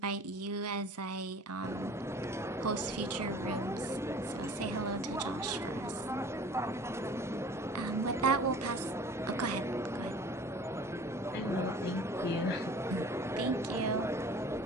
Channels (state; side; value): normal; both; correlation 0.46